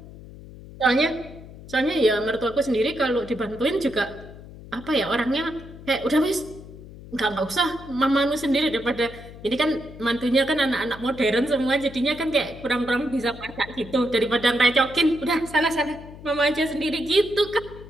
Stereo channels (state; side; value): noise; left; hum, 16 dB below the sound